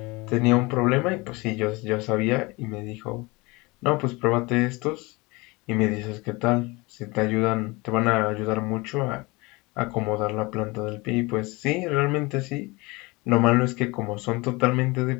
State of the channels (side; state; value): right; quieter; 24.5 dB